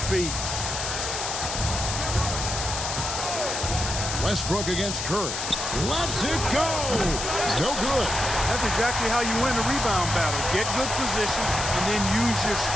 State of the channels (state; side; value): noise; left; hiss, 4 dB below the sound